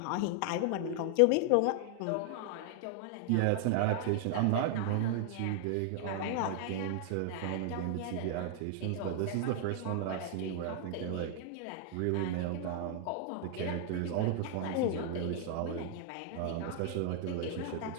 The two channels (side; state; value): both; different; correlation 0.00